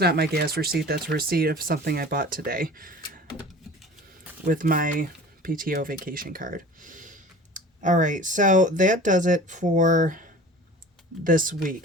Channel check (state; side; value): normal; both; correlation 0.41